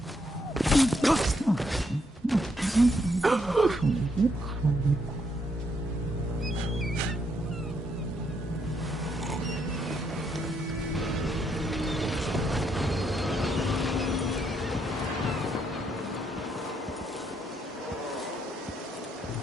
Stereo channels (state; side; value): normal; both; correlation 0.75